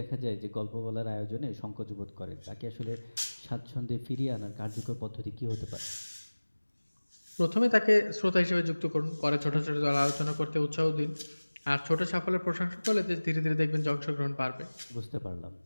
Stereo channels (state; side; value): inverted; both; correlation -1.00